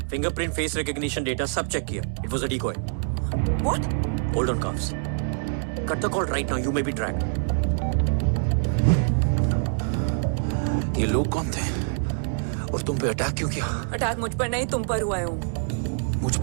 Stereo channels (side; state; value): left; silent; 61 dB below the other